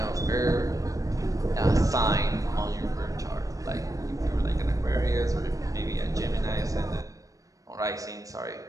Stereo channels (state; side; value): late; left; 0.16 ms